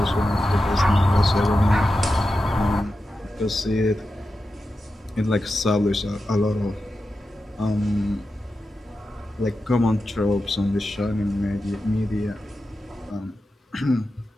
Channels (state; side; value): normal; both; correlation 0.91